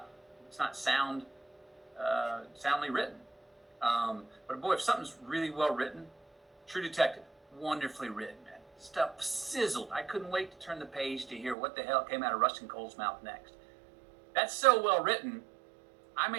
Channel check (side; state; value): left; drops out; at 11.6 s